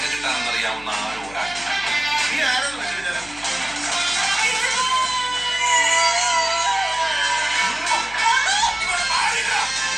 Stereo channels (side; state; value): left; noise; hum, 20 dB below the sound